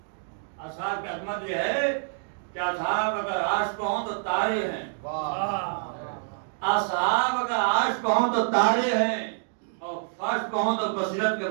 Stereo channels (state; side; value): silent; left; digital silence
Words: اصحاب کی عظمت یہ ہے کہ اصحاب اگر عرش پہ ہوں تو تارے ہیں. اصحاب اگر عرش پہ ہوں تو تارے ہیں، اور فرش پہ ہوں تو بصیرت کے